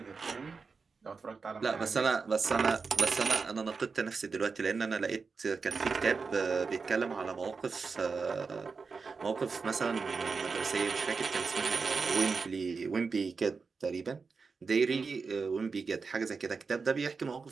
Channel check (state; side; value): quieter; left; 4.8 dB